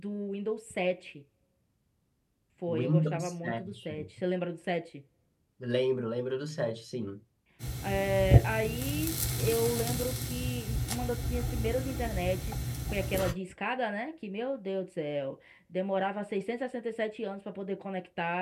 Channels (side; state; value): both; identical; correlation 1.00